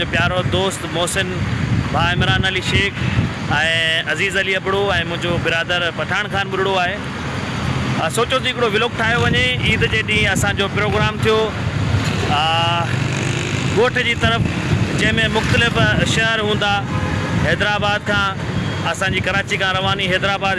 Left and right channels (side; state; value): both; identical; correlation 1.00